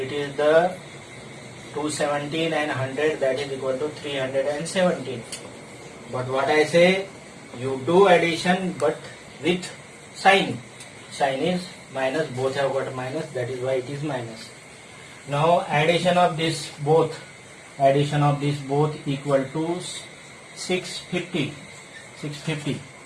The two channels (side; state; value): both; identical; correlation 1.00